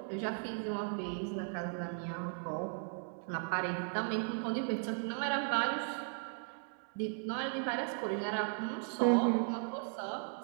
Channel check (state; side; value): silent; left; 53 dB below the other